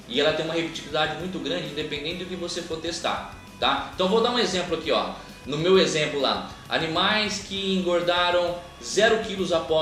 E ela tem uma repetibilidade muito grande, independente do que você for testar, tá? Então vou dar um exemplo aqui, ó. No meu exemplo lá, animais que engordaram 0 kg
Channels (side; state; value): both; identical; correlation 1.00